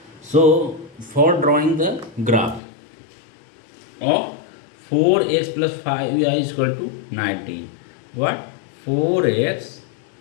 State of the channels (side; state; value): right; drops out; at 2.6 s